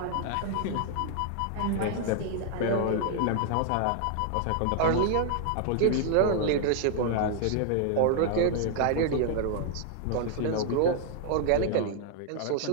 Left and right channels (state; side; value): different; both; correlation 0.00